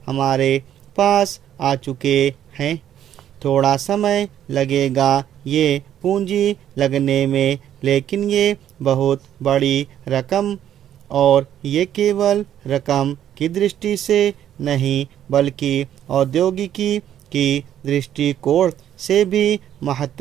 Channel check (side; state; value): left; quieter; 10.7 dB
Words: हमारे पास आ चुके हैं। थोड़ा समय लगेगा ये पूंजी लगने में, लेकिन ये बहुत बड़ी रकम, और ये केवल रकम की दृष्टि से नहीं बल्कि औद्योगिकी की दृष्टिकोण से भी